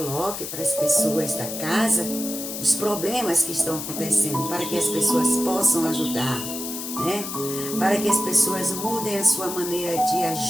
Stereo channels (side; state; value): left; noise; hiss, 7 dB below the sound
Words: para as pessoas da casa os problemas que estão acontecendo, para que as pessoas possam ajudar, né? Para que as pessoas mudem a sua maneira de